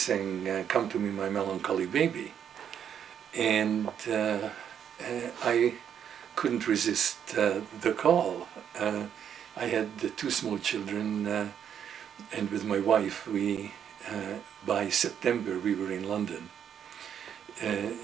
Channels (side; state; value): left; quieter; 8.7 dB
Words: "Come to me, my melancholy baby." And I couldn't resist the call. I had two small children, and with my wife, by September, we were in London.